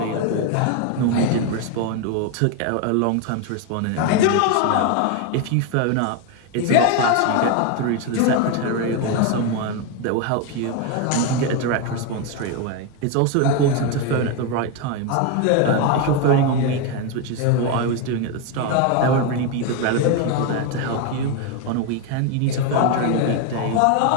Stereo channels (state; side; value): different; both; correlation 0.02